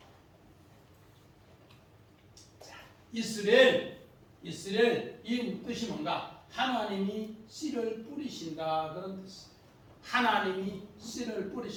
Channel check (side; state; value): both; identical; correlation 1.00